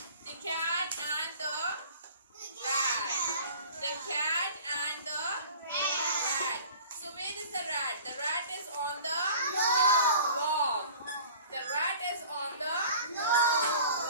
The cat and the rat. The cat and the rat. So where is the rat? The rat is on the log. The rat is on the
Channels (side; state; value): both; inverted; correlation -0.44